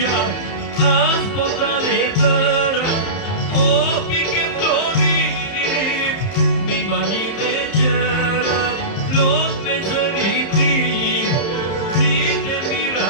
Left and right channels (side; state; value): right; late; 31 ms